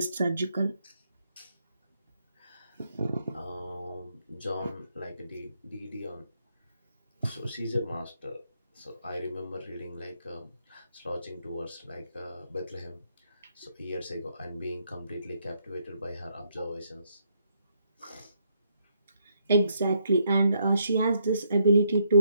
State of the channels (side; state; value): both; inverted; correlation -0.75